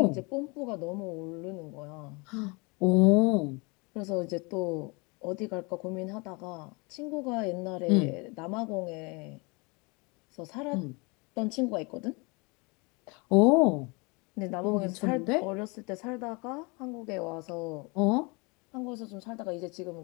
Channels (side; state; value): right; quieter; 29.1 dB